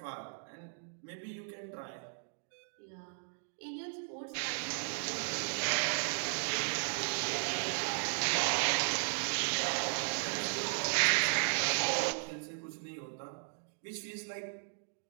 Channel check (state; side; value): silent; left; digital silence